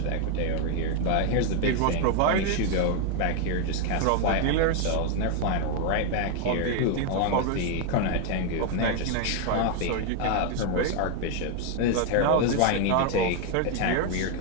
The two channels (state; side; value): different; both; correlation 0.01